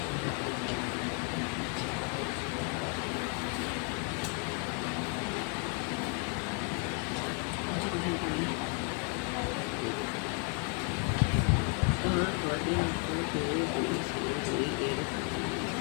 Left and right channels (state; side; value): quieter; right; 37.9 dB